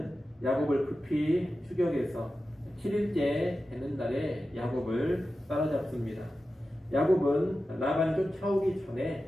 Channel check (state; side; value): normal; both; correlation 0.93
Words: 야곱을 급히 추격해서 7일째 되는 날에 야곱을 따라잡습니다. 야곱은 라반이 쫓아오기